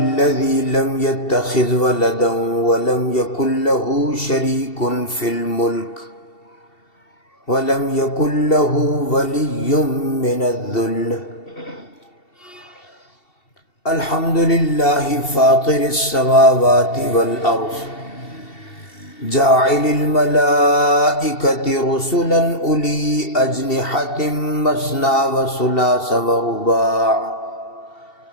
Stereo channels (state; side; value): late; right; 2.7 ms